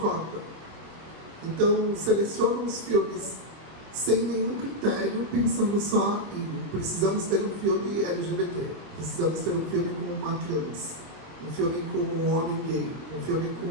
Então, selecionam os filmes sem nenhum critério, pensando só em precisamos ter um filme LGBT, precisamos ter um filme com uma trans, um filme com um homem gay, um filme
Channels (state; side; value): late; left; 25 ms